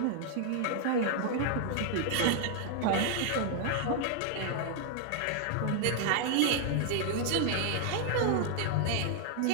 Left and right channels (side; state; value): both; different; correlation 0.00